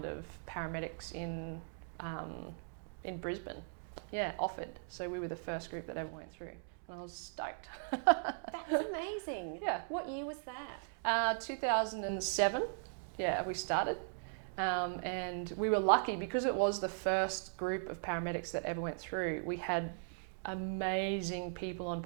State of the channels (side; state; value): left; silent; digital silence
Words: of paramedics in Brisbane. Yeah, offered. So we were the first group that ever went through. And I was stoked. That's amazing. Yeah. What year was that? 2007. Yeah, we started. And we were lucky because it was the first group of paramedics that ever went through. We had amazing people on